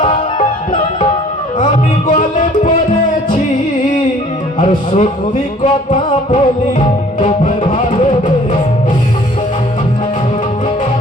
আমি গলে পড়েছি। আর সত্যি কথা বলি, তোমায় ভালোবেসে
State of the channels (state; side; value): normal; both; correlation 0.53